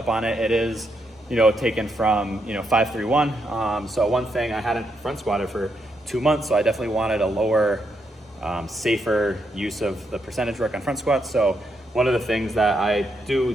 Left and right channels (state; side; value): normal; both; correlation 0.79